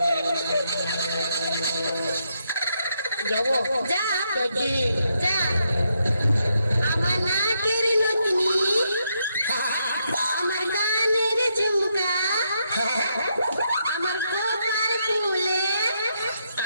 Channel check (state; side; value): inverted; both; correlation -0.79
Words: যাবো যা যাচ্ছি যা। আমার নাকের নথনি, আমার কানের ঝুমকা,